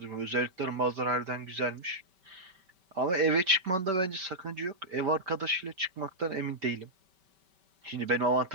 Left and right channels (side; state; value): left; late; 5.2 ms